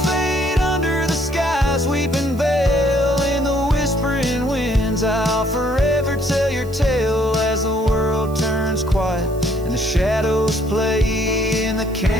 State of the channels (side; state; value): right; noise; hiss, 23 dB below the sound